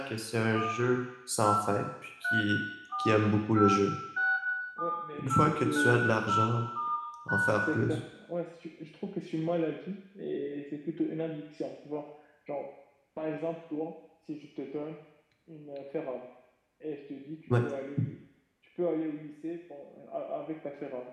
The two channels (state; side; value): identical; both; correlation 1.00